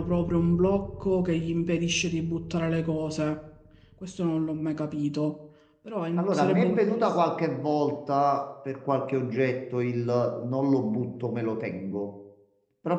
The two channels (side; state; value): both; identical; correlation 1.00